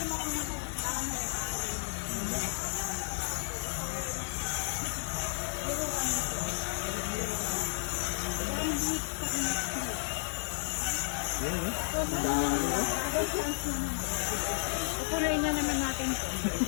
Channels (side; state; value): right; silent; 56 dB below the other